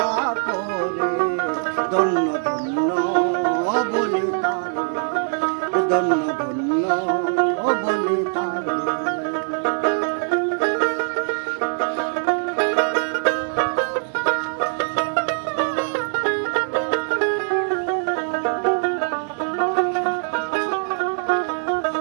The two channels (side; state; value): left; silent; digital silence